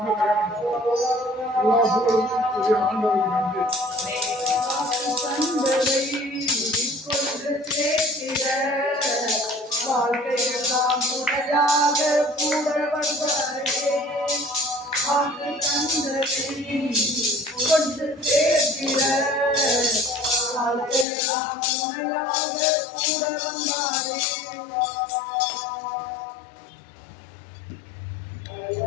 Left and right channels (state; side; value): drops out; right; at 21.1 s